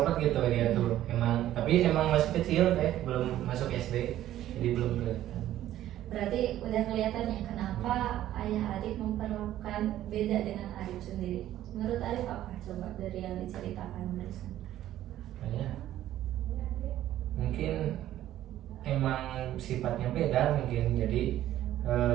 gitu dia tuh, emang, tapi emang masih kecil kayak belum masuk SD, jadi belum kelihatan. Berarti udah kelihatan ya kenapa ayah Arif memperlakukan beda dengan Arif sendiri. Menurut Arif apa? Coba dari yang diceritakan barusan. Kayak mungkin emang sifatnya beda mungkin, jadi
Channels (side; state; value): left; quieter; 13.1 dB